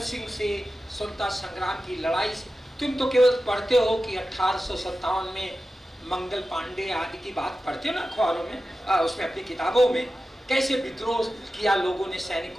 सिंह से, स्वतंत्रता संग्राम की लड़ाई से। तुम तो केवल पढ़ते हो कि 1857 में मंगल पांडे आदि की बात पढ़ते हो ना अखबारों में, उसमें अपनी किताबों में, कैसे विद्रोह किया लोगों ने,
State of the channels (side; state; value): both; normal; correlation 0.93